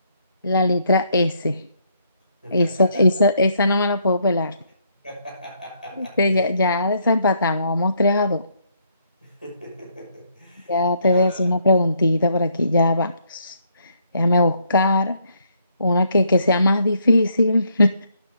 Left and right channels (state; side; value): inverted; both; correlation -0.72